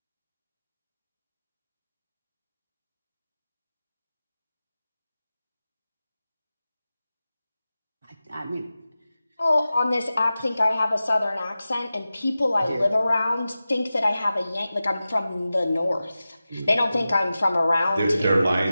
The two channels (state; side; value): inverted; both; correlation -0.95